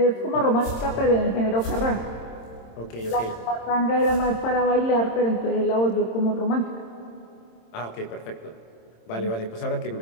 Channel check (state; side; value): late; right; 26 ms